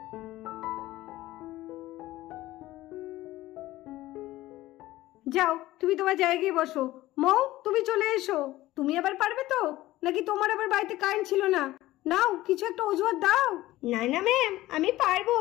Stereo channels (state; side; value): quieter; right; 16.6 dB